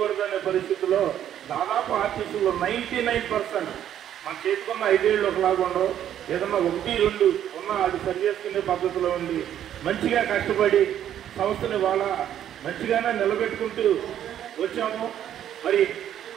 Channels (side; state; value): left; quieter; 10.6 dB